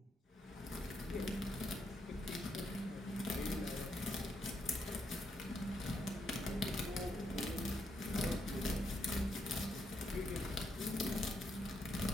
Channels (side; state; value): both; normal; correlation 0.78